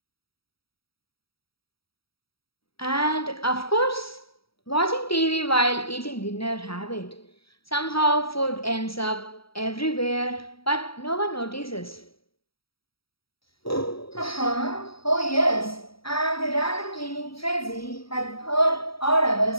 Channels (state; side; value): late; right; 0.75 ms